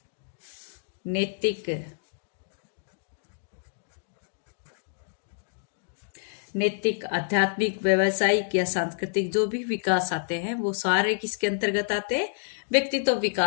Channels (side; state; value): right; silent; digital silence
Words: नैतिक, आध्यात्मिक, व्यावसायिक या सांस्कृतिक जो भी विकास आते हैं वो सारे किसके अंतर्गत आते हैं? व्यक्तित्व